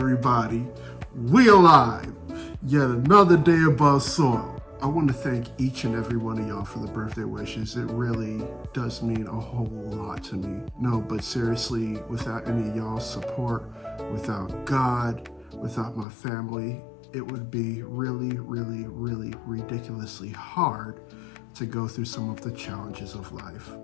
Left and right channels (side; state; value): right; drops out; at 16.1 s